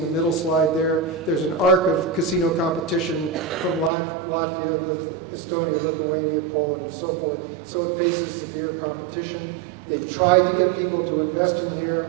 the middle slide there. There's an arc of casino competition from Latvia, Estonia, Lithuania, Poland, and so forth. So it faces severe competition. They've tried to get people to invest in here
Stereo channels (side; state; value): left; drops out; at 3.9 s